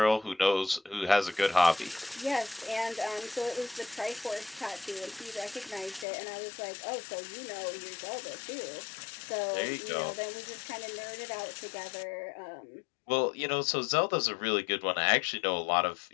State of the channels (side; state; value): right; drops out; at 6.1 s